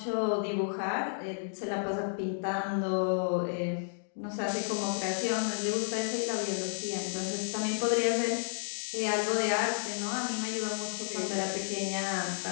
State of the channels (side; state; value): right; silent; digital silence